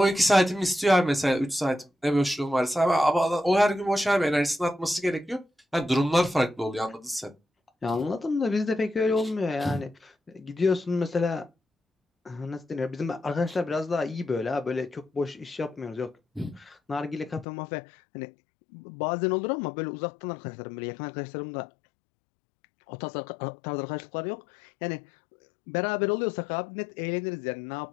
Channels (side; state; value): right; drops out; at 17.4 s